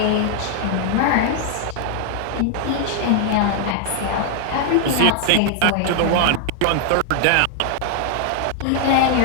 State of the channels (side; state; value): both; different; correlation 0.00